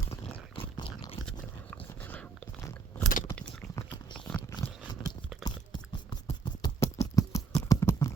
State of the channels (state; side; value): quieter; left; 5.2 dB